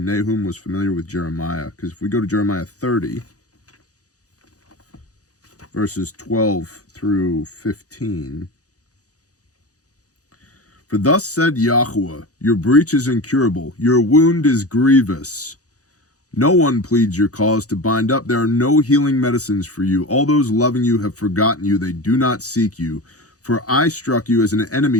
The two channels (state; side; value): late; right; 0.67 ms